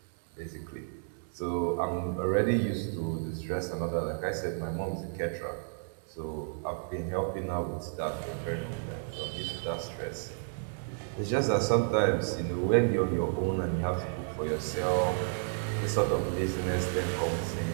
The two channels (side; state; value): left; silent; 57 dB below the other